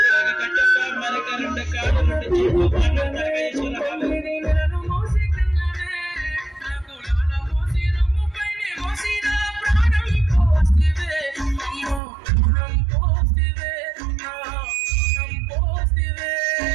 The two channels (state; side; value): drops out; left; at 12.0 s